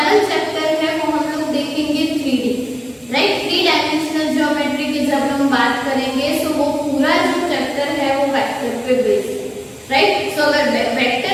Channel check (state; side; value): identical; both; correlation 1.00